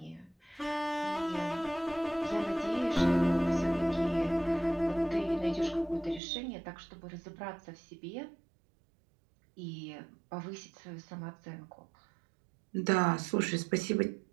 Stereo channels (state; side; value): drops out; left; at 6.2 s